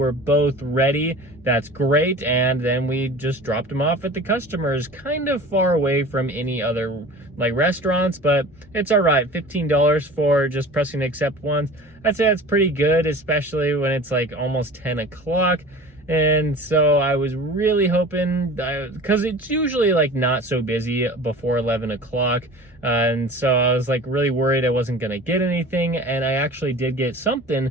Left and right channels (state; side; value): normal; both; correlation 0.40